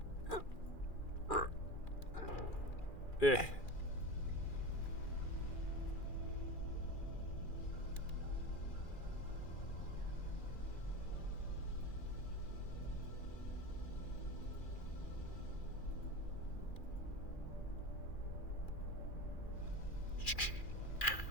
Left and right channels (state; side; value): late; right; 2.4 ms